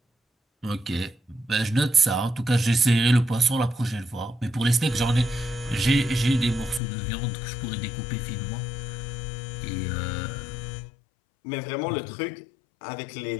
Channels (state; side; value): drops out; right; at 6.8 s